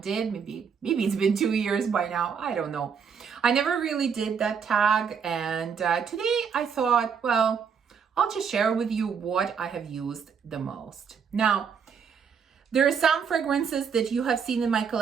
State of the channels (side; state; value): left; quieter; 6.6 dB